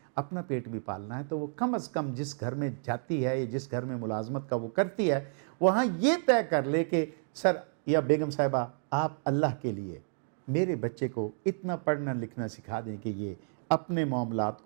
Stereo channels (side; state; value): left; silent; digital silence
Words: اپنا پیٹ بھی پالنا ہے تو وہ کم از کم جس گھر میں جاتی ہے یا جس گھر میں ملازمت کا وہ کرتی ہے وہاں یہ طے کر لے کہ سر یا بیگم صاحبہ آپ اللہ کے لیے میرے بچے کو اتنا پڑھنا لکھنا سکھا دیں کہ یہ اپنے معاملات